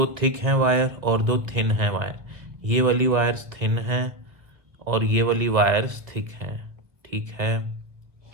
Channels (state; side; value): late; left; 1.6 ms